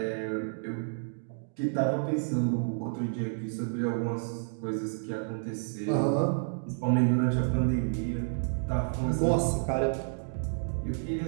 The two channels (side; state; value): left; silent; digital silence